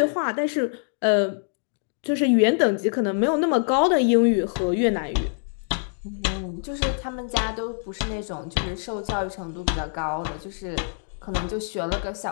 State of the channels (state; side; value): silent; right; digital silence